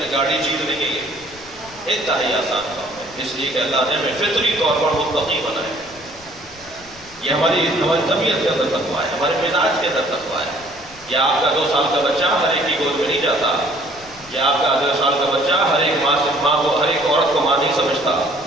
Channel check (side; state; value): left; noise; rumble, 23 dB below the sound